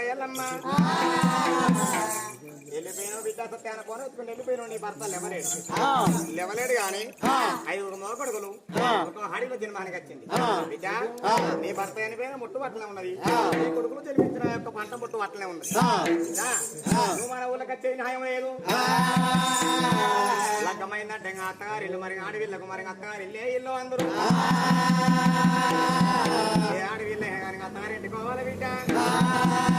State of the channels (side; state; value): both; identical; correlation 1.00